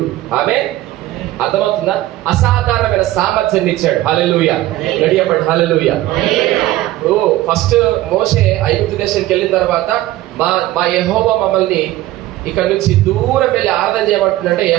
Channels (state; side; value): quieter; left; 15.7 dB